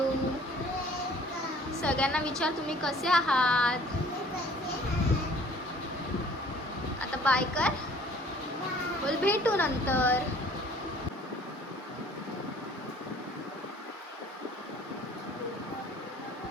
सगळ्यांना विचार तुम्ही कसे आहात. आता बाय कर. बोल भेटू नंतर.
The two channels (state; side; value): normal; both; correlation 0.54